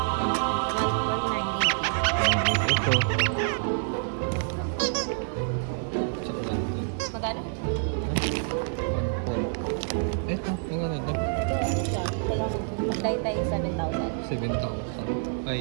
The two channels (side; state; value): left; silent; digital silence